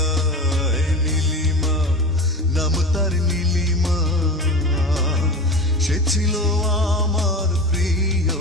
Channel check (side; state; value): both; normal; correlation 0.30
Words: নীলিমা, নাম তার নীলিমা, সে ছিল আমার